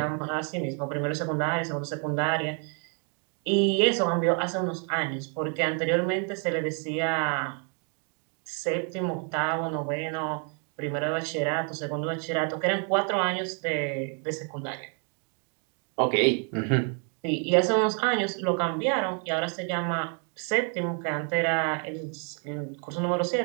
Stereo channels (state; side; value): quieter; left; 40.0 dB